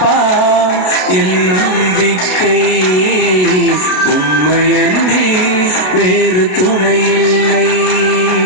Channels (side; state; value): right; late; 33 ms